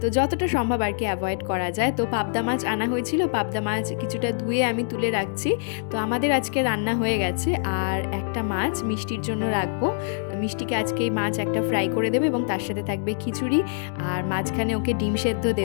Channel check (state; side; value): silent; right; digital silence